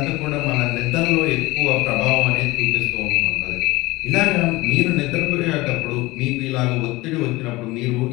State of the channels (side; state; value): right; quieter; 20.7 dB